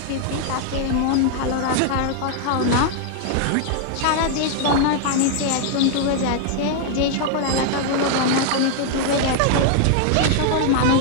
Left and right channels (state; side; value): different; both; correlation 0.00